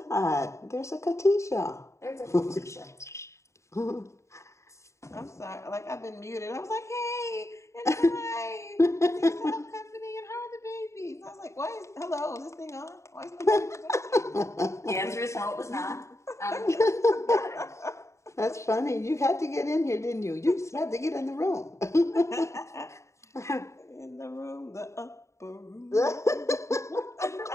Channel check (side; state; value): right; late; 0.14 ms